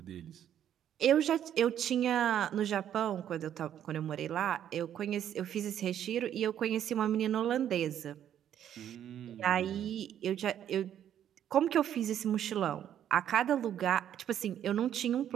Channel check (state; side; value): quieter; left; 10.2 dB